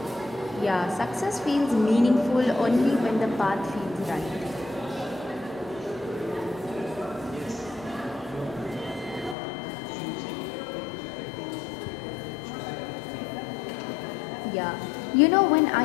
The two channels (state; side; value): drops out; right; at 9.3 s